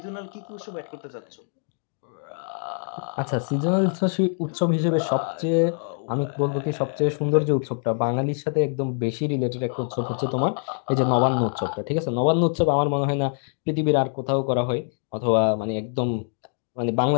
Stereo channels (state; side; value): silent; right; digital silence